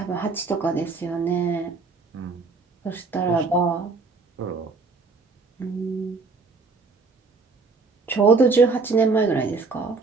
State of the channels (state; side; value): quieter; left; 4.2 dB